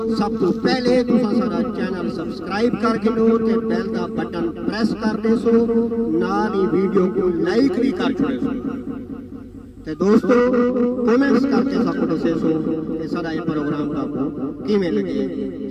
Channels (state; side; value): identical; both; correlation 1.00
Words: سب تو پہلے تساں سارا چینل سبسکرائب کر کے لو تے بیل دا بٹن پریس کر دے سو، نال ہی ویڈیو کو لائک بھی کر چھوڑے سو تے دوستو کومنٹس کر کے سب کو دسے سو کہ سارا یہ پروگرام کا کو کیویں لگے